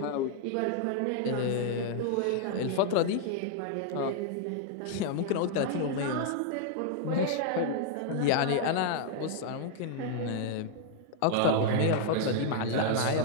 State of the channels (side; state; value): both; different; correlation -0.01